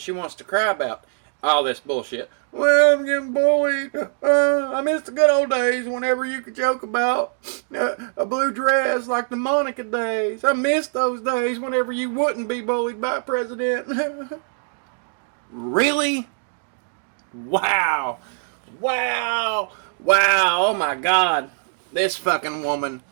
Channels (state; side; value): silent; left; digital silence